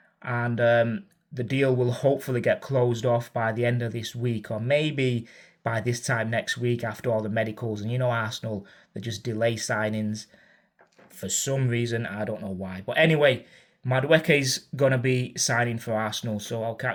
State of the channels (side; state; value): both; identical; correlation 1.00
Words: and the deal will hopefully get closed off by the end of this week, or maybe by this time next week after all the medicals. And you know Arsenal, they just delay signings for some reason. I don't know why. But anyway, Madueke's going to be signing for Arsenal, so I'll